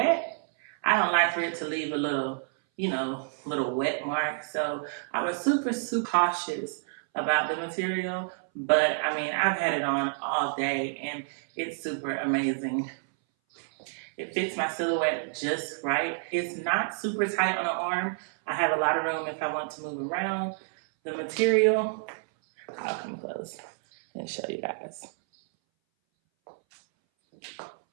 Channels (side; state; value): left; silent; 59 dB below the other